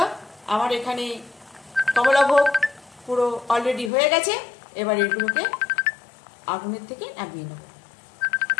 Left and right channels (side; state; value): right; drops out; at 3.9 s